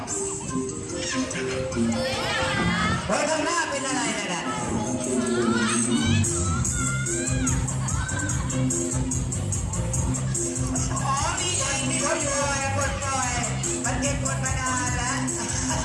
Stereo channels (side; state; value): both; identical; correlation 1.00